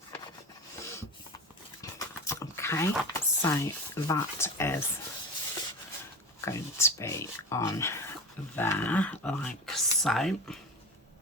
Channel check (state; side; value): normal; both; correlation 0.29